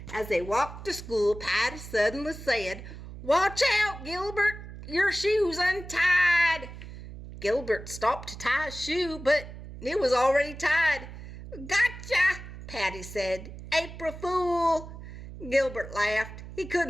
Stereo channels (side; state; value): right; noise; hum, 13 dB below the sound